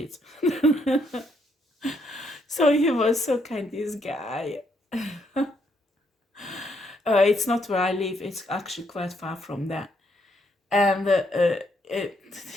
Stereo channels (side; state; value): both; normal; correlation 0.74